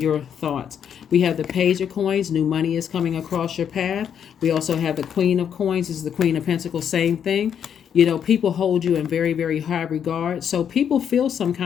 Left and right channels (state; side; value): quieter; right; 8.3 dB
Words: thoughts. We have the page of coins. New money is coming across your path. We also have the queen of coins. This is the queen of pentacles. Same thing. You know, people hold you in very, very high regard. So people feel some